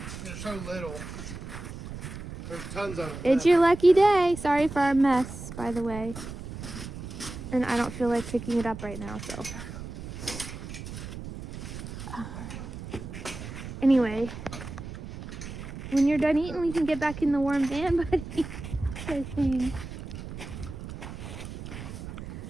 They're so little. There's tons of it. It's your lucky day. Sorry for our mess, by the way. And I don't feel like picking it up right now, so. Anyway, when you're done eating, we can get back in the warm van, buddy. I think.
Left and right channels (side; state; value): right; noise; rumble, 10 dB below the sound